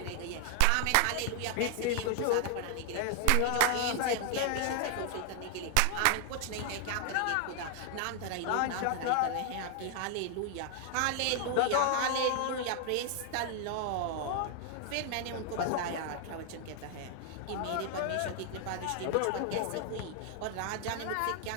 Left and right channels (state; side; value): different; both; correlation 0.00